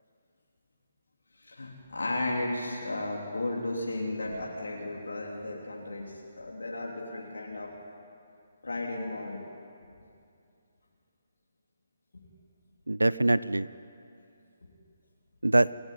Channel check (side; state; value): both; inverted; correlation -0.94